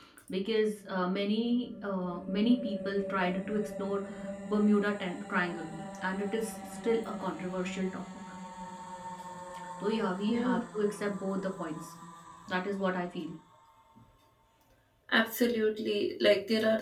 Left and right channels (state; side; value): identical; both; correlation 1.00